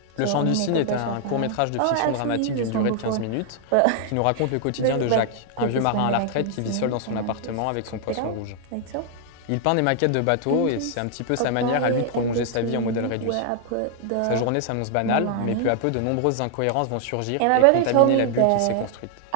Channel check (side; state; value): both; different; correlation 0.00